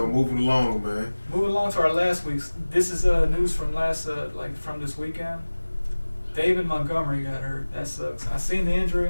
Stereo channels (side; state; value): both; inverted; correlation -1.00